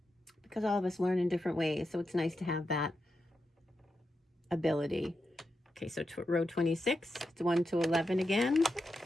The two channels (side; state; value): both; normal; correlation 0.87